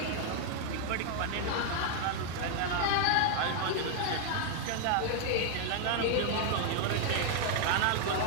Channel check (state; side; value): different; both; correlation 0.00